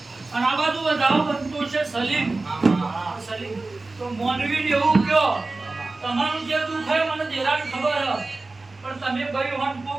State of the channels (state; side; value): quieter; left; 3.4 dB